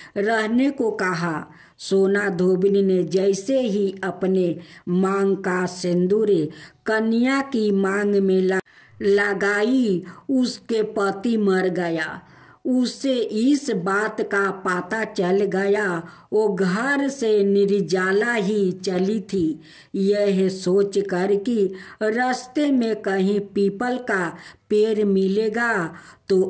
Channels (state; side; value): identical; both; correlation 1.00